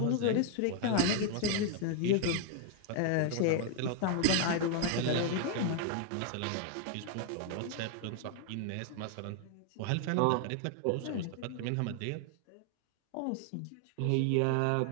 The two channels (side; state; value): both; different; correlation 0.00